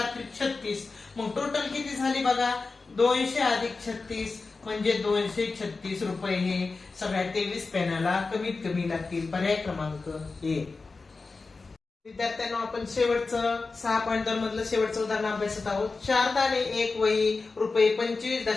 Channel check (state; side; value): quieter; right; 4.0 dB